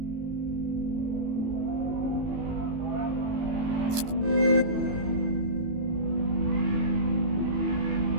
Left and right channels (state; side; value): late; left; 18 ms